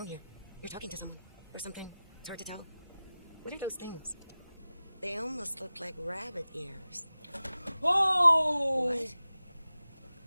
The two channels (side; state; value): both; inverted; correlation -0.96